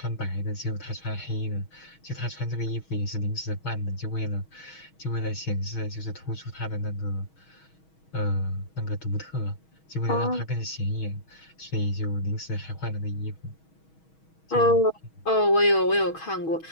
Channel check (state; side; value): late; right; 6.3 ms